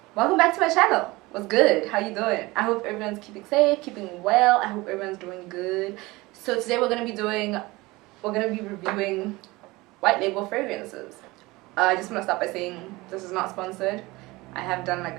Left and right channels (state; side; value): quieter; left; 21.6 dB